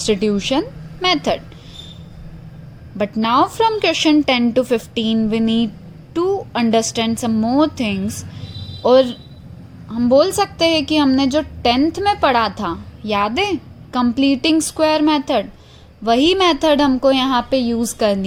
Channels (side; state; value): both; identical; correlation 1.00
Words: method. But now from question 10 to 15 we need to understand some more things. और हम बोल सकते हैं कि हमने जो 10th में पढ़ा था, याद है, कंप्लीटिंग स्क्वायर मेथड, वही मेथड हमको यहाँ पे यूज़